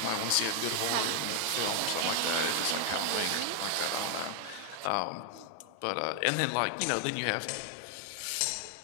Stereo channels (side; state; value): both; different; correlation 0.00